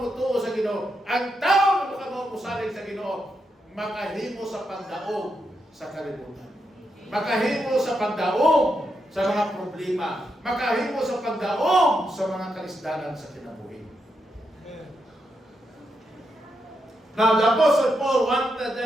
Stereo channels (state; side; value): normal; both; correlation 0.83